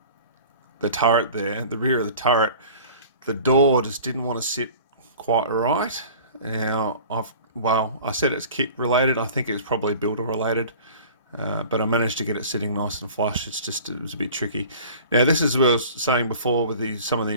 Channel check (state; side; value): inverted; both; correlation -0.44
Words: turret there, the rear of the turret. The door just didn't want to sit quite right. Now, I said it's kit related. I think it was probably builder related. But I managed to get it sitting nice and flush. It was a bit tricky. Now, this is what I was saying before with some of the